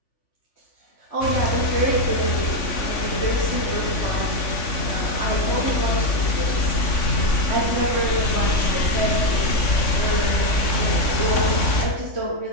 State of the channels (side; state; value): right; late; 3.5 ms